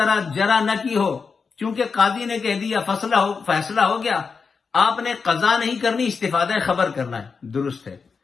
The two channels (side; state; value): right; quieter; 5.3 dB